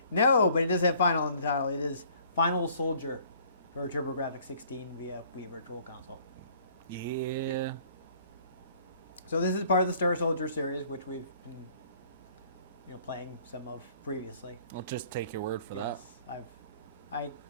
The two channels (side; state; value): both; inverted; correlation -0.57